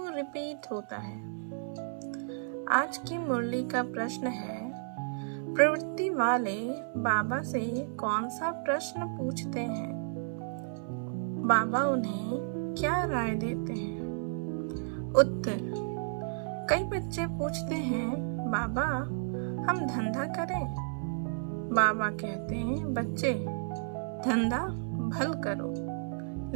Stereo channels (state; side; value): silent; left; 56 dB below the other